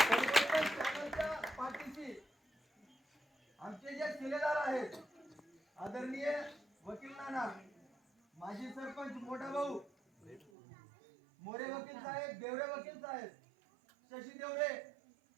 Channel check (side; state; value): left; drops out; at 10.5 s